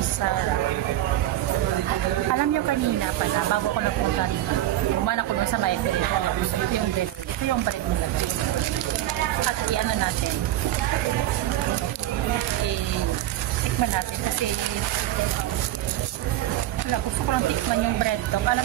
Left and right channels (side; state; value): left; quieter; 13.8 dB